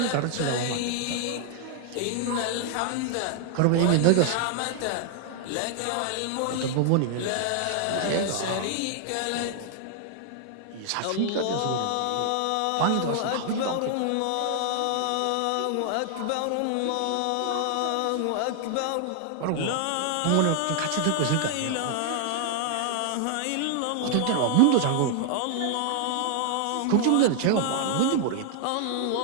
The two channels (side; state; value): both; different; correlation 0.00